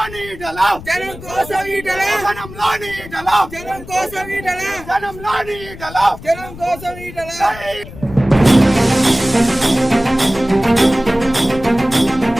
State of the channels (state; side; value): noise; left; rumble, 15 dB below the sound